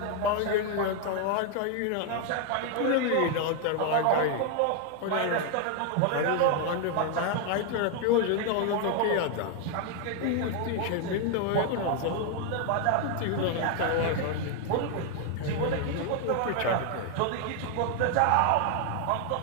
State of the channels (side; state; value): both; different; correlation 0.01